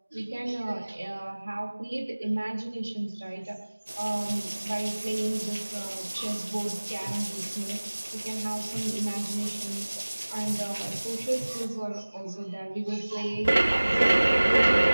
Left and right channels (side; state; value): both; inverted; correlation -1.00